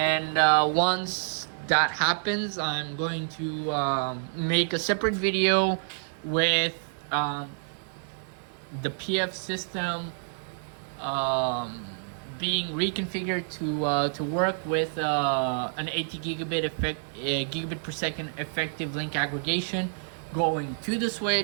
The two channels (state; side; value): silent; left; digital silence